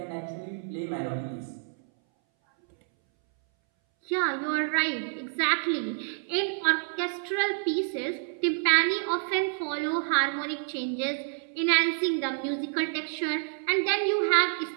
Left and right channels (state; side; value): silent; left; 59 dB below the other